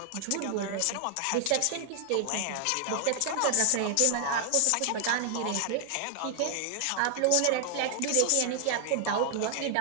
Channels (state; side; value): different; both; correlation 0.00